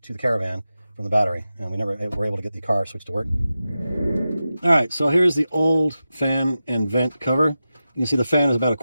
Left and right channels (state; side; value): inverted; both; correlation -0.92